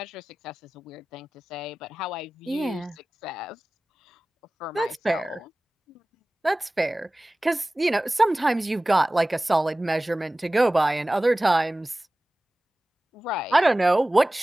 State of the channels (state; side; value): normal; both; correlation 0.97